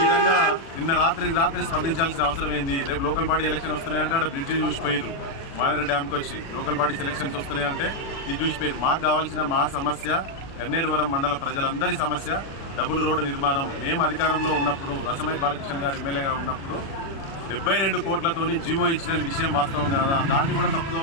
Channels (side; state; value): right; late; 36 ms